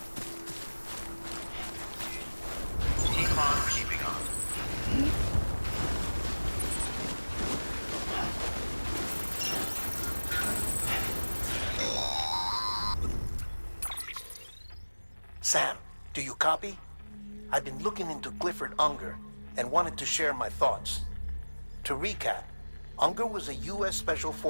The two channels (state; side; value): inverted; both; correlation -1.00